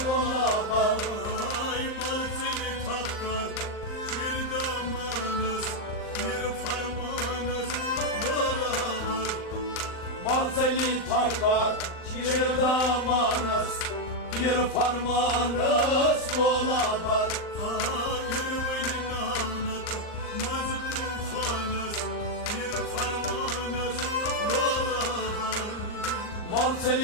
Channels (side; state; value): right; late; 39 ms